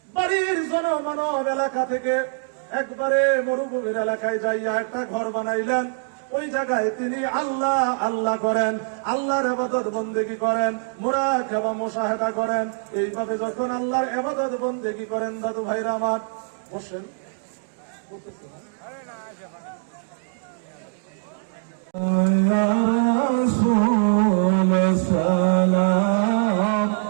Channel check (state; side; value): silent; left; digital silence